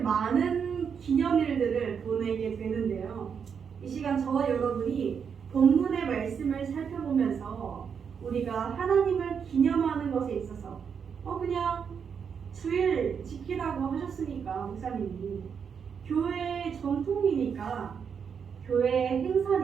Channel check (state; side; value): quieter; left; 6.8 dB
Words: 기념일들을 보내게 되는데요. 이 시간 저와 여러분이 본문의 말씀을 살펴보면서 우리가 하나님을 기념하는 것에 있어서 그냥 주일 지키라고 하셨으니까 목사님이 교회의 전통이니까 교회의